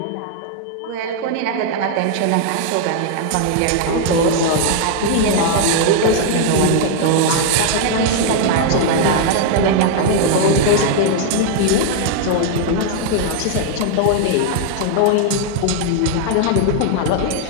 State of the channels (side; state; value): both; different; correlation 0.00